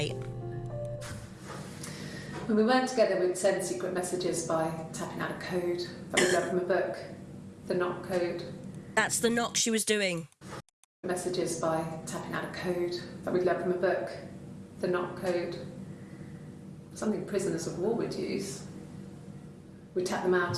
When we weren't together, we'd send secret messages by tapping out a code that we learned from a book, the knock code. That's the knock she was doing. Messages by tapping out a code that we'd learned from a book, the knock code. Something prisoners of war would use. We'd tap them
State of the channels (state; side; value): identical; both; correlation 1.00